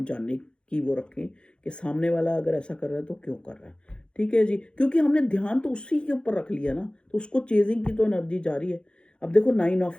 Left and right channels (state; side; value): late; right; 0.054 ms